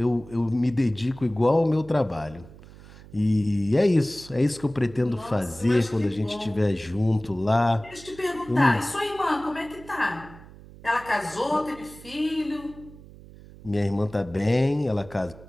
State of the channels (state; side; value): noise; right; hum, 19 dB below the sound